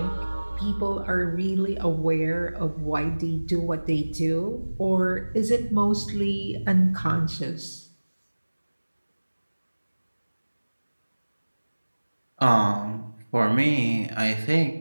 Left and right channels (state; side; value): inverted; both; correlation -1.00